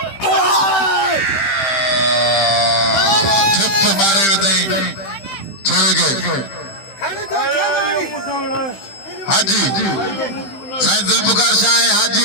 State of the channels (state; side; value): late; right; 15 ms